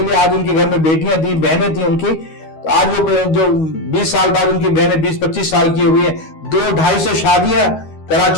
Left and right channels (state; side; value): late; right; 13 ms